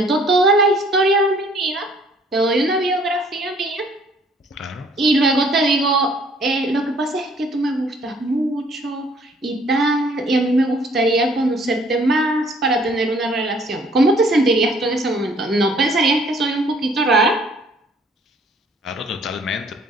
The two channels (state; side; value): normal; both; correlation 0.59